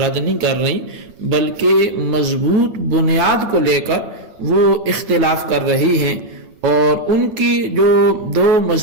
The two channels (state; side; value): late; left; 9.2 ms